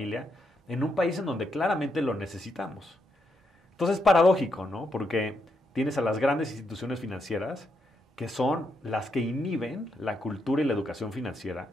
en un país en donde claramente lo necesitamos. Entonces es paradójico, ¿no? Porque tienes a las grandes instituciones financieras que son las que inhiben la cultura y la educación financiera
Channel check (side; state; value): both; normal; correlation 0.80